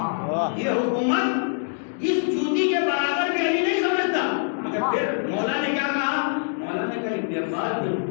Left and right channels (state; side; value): silent; right; digital silence